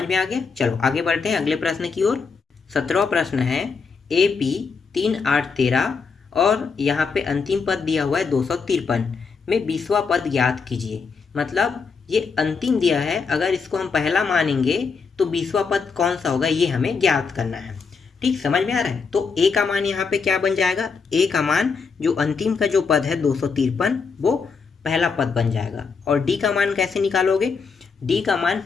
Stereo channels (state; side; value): quieter; right; 5.2 dB